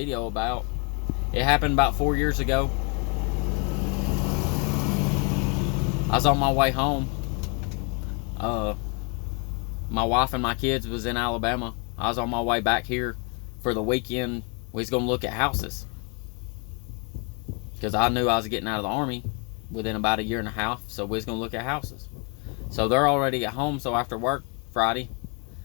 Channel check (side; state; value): right; quieter; 35.6 dB